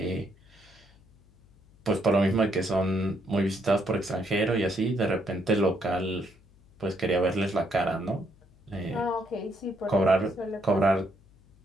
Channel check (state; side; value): noise; left; hum, 28 dB below the sound